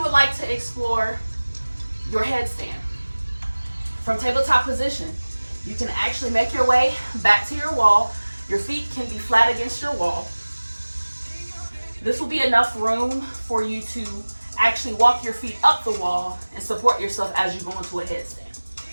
would like to explore your headstand from tabletop position, You can actually make your way back to your wall. Your feet can be flat against your wall. This will be enough room for you to actually walk your feet up the wall and support yourself as you go into a headstand.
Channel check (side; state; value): both; inverted; correlation -1.00